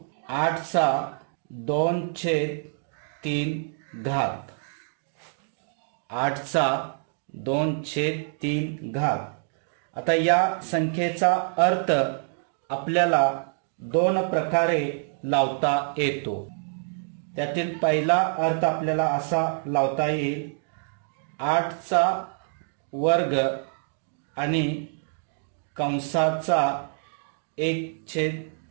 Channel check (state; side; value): silent; left; 61 dB below the other